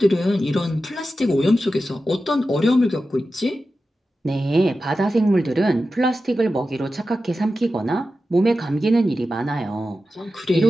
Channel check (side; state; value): both; normal; correlation 0.92